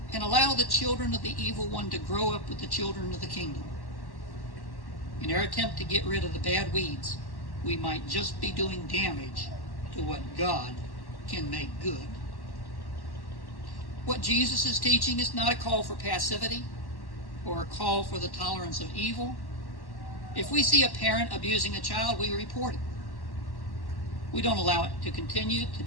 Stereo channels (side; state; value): right; late; 1.1 ms